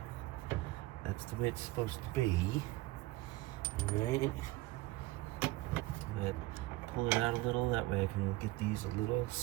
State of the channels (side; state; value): left; quieter; 18.8 dB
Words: that's the way it's supposed to be. Alright. pull it out a little. That way I can get these a little